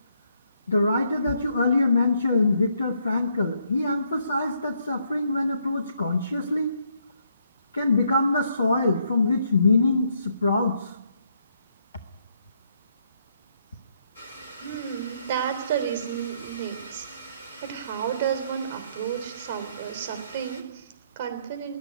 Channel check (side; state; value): both; inverted; correlation -0.72